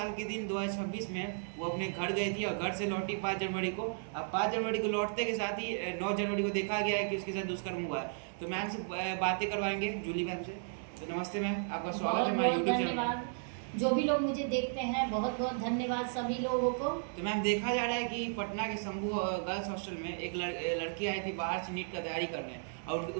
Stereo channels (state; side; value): silent; left; digital silence